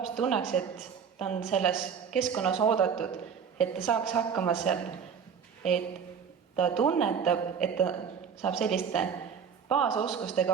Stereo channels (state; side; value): quieter; left; 6.9 dB